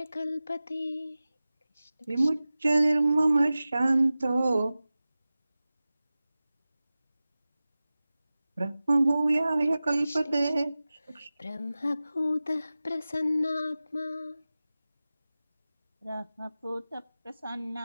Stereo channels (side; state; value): both; inverted; correlation -0.96